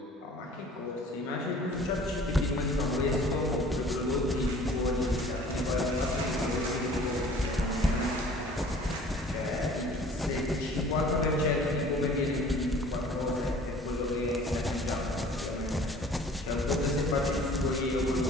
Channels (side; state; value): both; normal; correlation 0.49